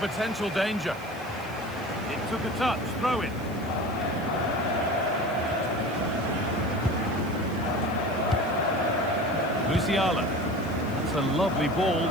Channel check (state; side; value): noise; left; hiss, 23 dB below the sound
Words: danger. It took a touch, throw in. Musiala. That's a lovely ball.